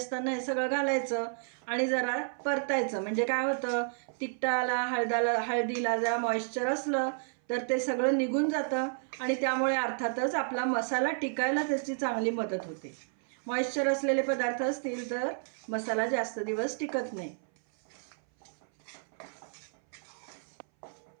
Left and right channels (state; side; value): silent; left; 57 dB below the other